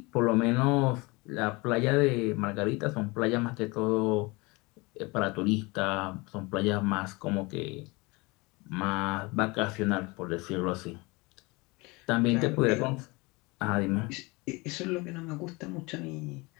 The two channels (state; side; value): quieter; right; 25.3 dB